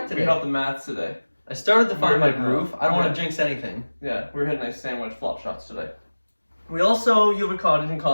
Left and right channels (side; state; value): both; inverted; correlation -1.00